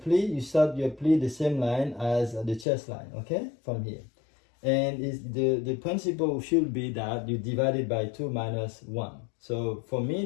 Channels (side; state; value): right; drops out; at 2.7 s